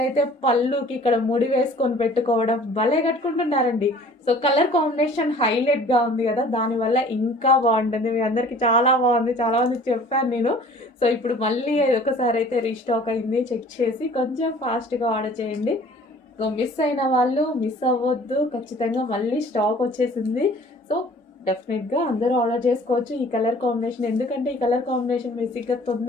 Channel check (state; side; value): normal; both; correlation 0.50